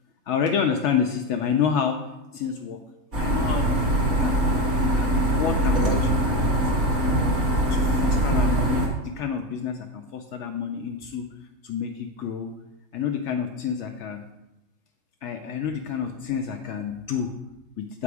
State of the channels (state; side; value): late; left; 3.3 ms